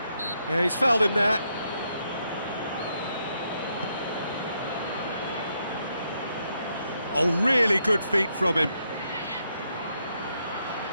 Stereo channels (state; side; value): inverted; both; correlation -0.78